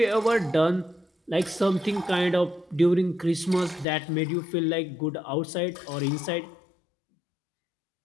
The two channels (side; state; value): right; drops out; at 3.9 s